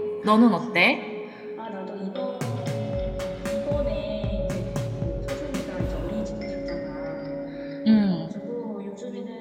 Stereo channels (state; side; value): identical; both; correlation 1.00